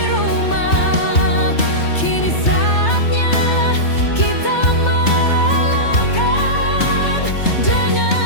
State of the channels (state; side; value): late; right; 3.3 ms